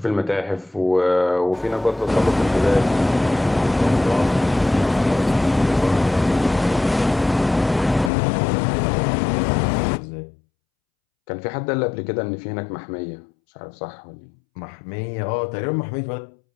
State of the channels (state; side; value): drops out; right; at 8.1 s